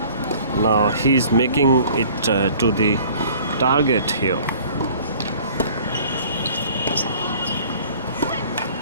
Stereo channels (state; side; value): inverted; both; correlation -0.50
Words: Now he's making it to the target here.